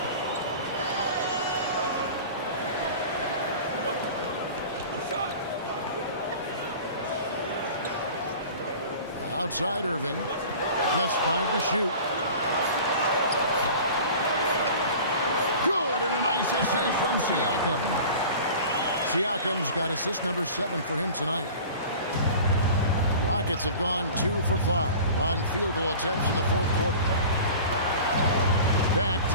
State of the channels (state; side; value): inverted; both; correlation -0.40